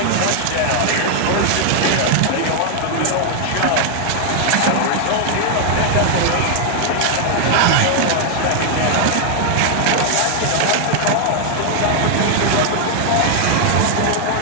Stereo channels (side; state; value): both; different; correlation 0.00